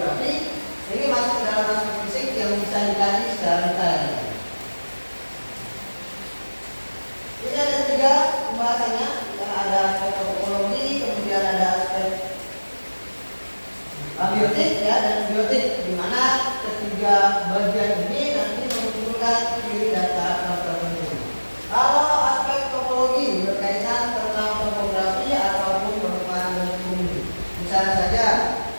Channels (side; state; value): both; inverted; correlation -1.00